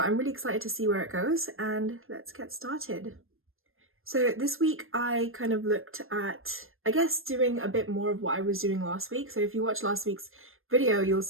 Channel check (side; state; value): left; late; 0.60 ms